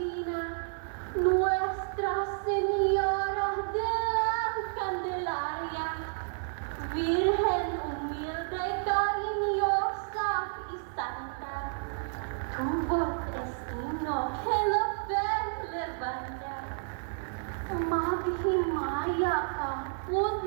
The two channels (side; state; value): left; silent; 57 dB below the other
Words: Nuestra Señora de la Candelaria, Virgen humilde, cariñosa y santa, tu voz es himno que la fe levanta. Maghimaya ka,